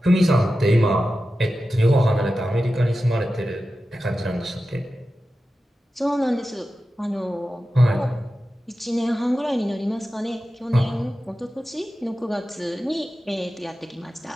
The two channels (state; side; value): normal; both; correlation 0.93